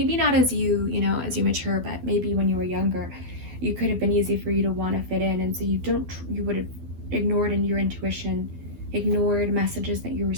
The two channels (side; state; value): left; late; 12 ms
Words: not as you mature, but maybe when you were younger, you could have been easy for you to want to fit in, and so you would have ignored in your intuition, ignored messages that you